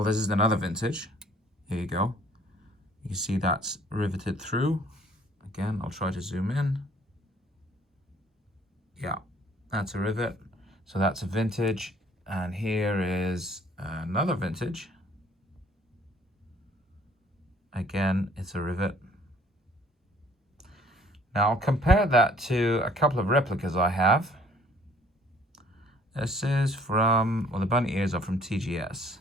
this is another vintage. Here you go. You can see that's riveted through. Again, I'll try to zoom in. Yeah, that's a rivet. So that's a vintage. And here is another vintage. Again, it's a rivet. Now I'll compare that to a couple of replicas I have. This is from, well, the bunny ears are from TGS.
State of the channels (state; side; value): normal; both; correlation 0.57